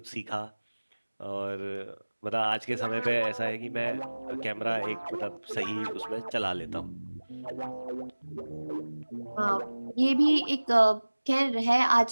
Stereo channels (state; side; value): inverted; both; correlation -1.00